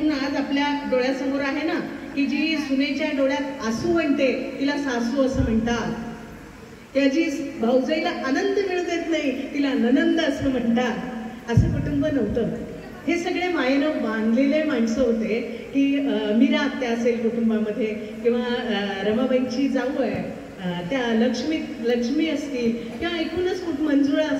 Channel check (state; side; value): identical; both; correlation 1.00